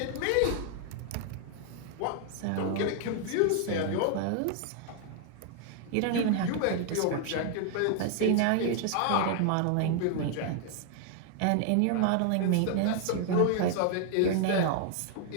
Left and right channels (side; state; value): both; different; correlation 0.00